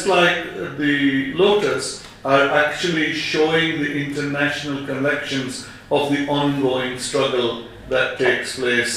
like the Lotus, are actually showing the international connections of the ongoing struggle that takes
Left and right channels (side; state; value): both; identical; correlation 1.00